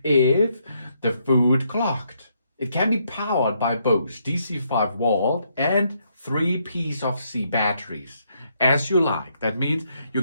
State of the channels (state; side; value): inverted; both; correlation -0.75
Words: if the food clogged. It can be powered by both DC 5-volt and 3 PC batteries, as you like. That means you